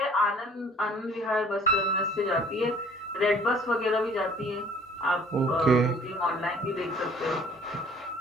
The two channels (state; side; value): normal; both; correlation 0.54